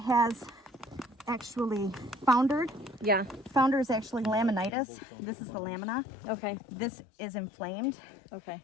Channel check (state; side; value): drops out; right; at 4.7 s